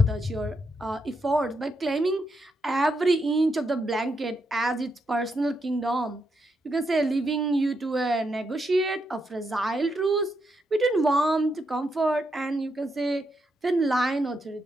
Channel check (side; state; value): both; normal; correlation 0.81